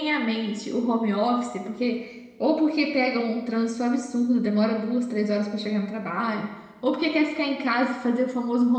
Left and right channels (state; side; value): identical; both; correlation 1.00